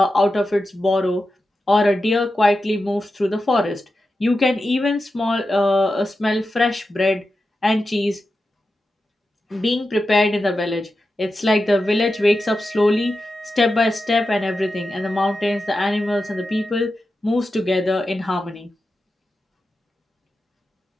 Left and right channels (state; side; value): normal; both; correlation 0.91